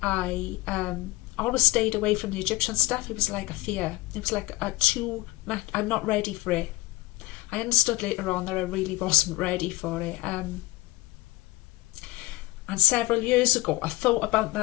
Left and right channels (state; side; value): quieter; right; 20.1 dB